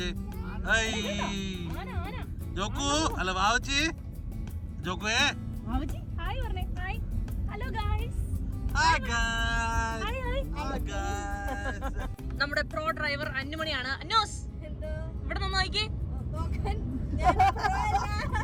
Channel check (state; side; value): identical; both; correlation 1.00